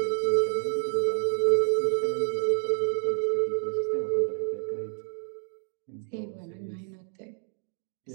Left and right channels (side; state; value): left; silent; 59 dB below the other